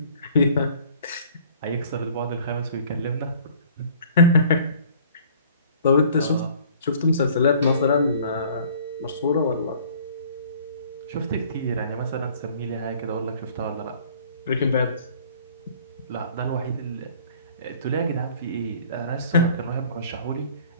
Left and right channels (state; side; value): inverted; both; correlation -0.53